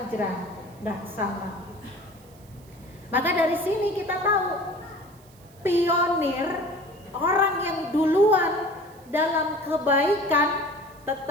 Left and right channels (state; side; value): noise; right; hiss, 27 dB below the sound